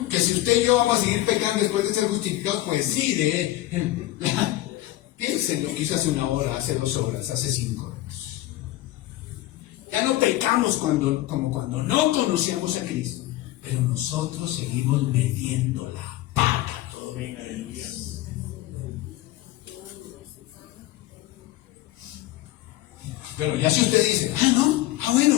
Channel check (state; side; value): quieter; right; 15.9 dB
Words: Que si usted y yo vamos a seguir pecando después de ser justificados, pues sí, piensen lo que hizo hace 1 hora, hace 2 horas, hace 5 horas. Ya no pecamos como cuando no conocíamos a Cristo, pero nosotros seguimos metiendo la pata todavía. Pero ya si usted dice,